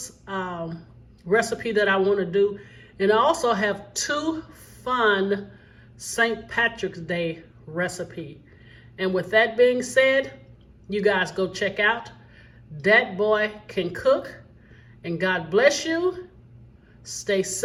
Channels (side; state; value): both; identical; correlation 1.00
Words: recipe that I want to do. And I also have 2 fun St. Patrick's Day recipe. And with that being said, you guys go check out Dat Boy Can Cook. And God bless you. Stay